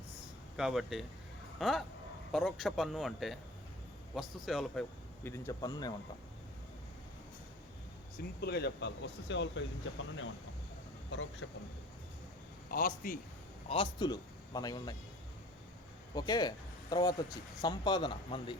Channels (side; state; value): both; normal; correlation 0.44